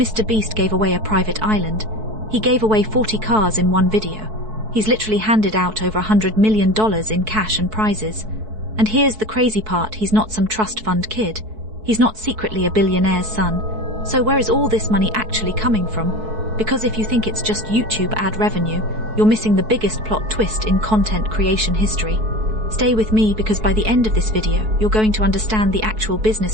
gave away a private island. He gave away 40 cars in one video. He's literally handed out over $100 million in cash and prizes. And here's the crazy part, he's not some trust fund kid. He's not secretly a billionaire's son. So where is all this money actually coming from? Because if you think it's just YouTube ad revenue, you're missing the biggest plot twist in content creation history. Stay with me, because by the end of this video, you're going to understand the actual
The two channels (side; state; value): left; late; 4.6 ms